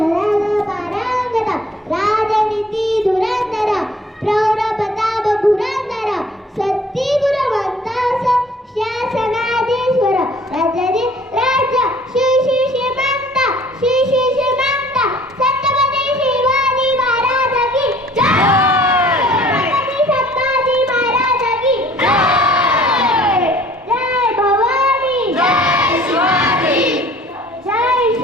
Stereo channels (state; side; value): normal; both; correlation 0.54